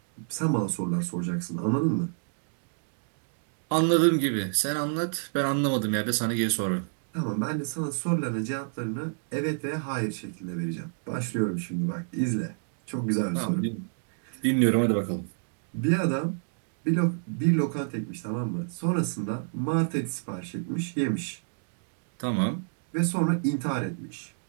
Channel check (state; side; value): silent; left; digital silence